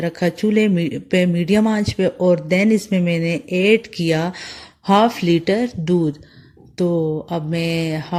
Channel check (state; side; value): identical; both; correlation 1.00